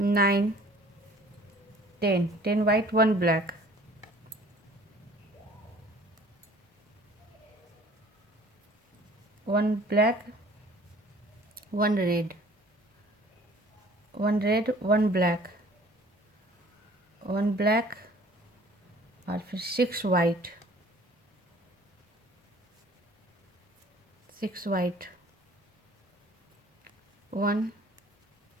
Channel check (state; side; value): normal; both; correlation 0.52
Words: 10, 10 white, 1 black, 1 black, 1 red, 1 red, 1 black, 1 black और फिर 6 white, 6 white, 1